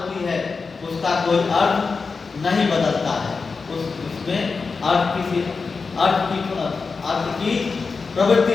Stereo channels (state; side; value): quieter; right; 4.7 dB